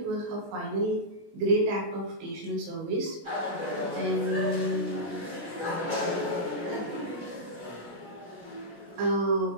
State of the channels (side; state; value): left; late; 16 ms